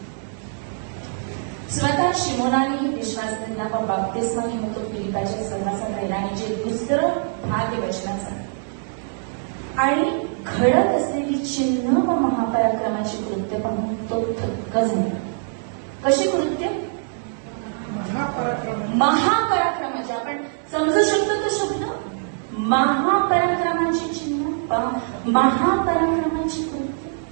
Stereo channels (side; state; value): left; silent; digital silence